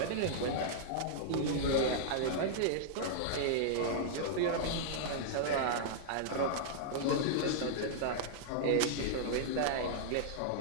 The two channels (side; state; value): both; different; correlation -0.02